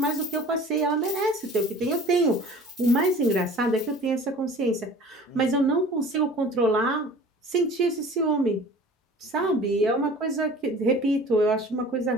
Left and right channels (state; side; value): normal; both; correlation 0.44